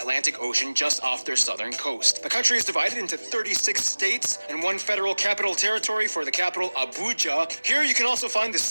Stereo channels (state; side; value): inverted; both; correlation -1.00